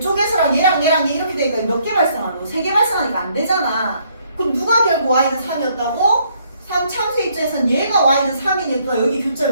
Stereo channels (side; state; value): both; inverted; correlation -0.68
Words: 얘랑 얘 이렇게 되니까 몇 개 발생하노? 3개 발생하니까 안 되잖아. 그럼 누가 결국 y는 3이었다고? 3참수 입장에서는 얘가 y는 3이니까 여기